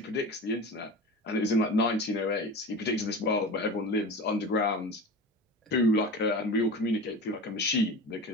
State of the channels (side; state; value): both; normal; correlation 0.32